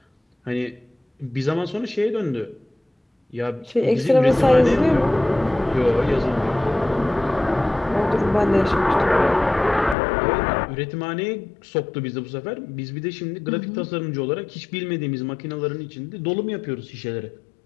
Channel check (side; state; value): right; drops out; at 10.0 s